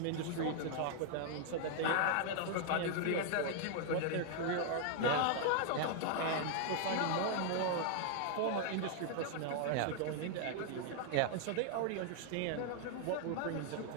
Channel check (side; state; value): both; different; correlation 0.00